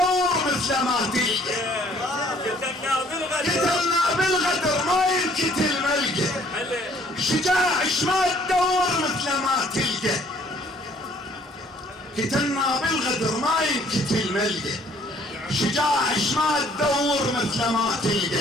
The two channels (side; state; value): both; normal; correlation 0.59